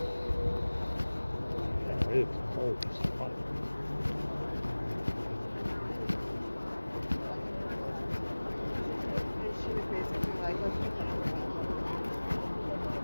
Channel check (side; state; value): both; inverted; correlation -1.00